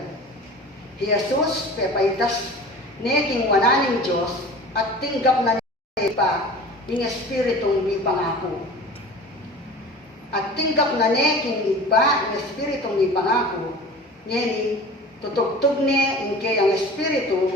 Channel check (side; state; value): both; normal; correlation 0.39